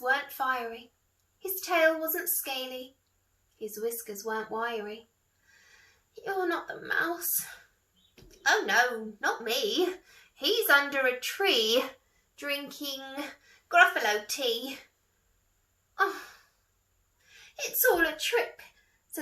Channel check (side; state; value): both; identical; correlation 1.00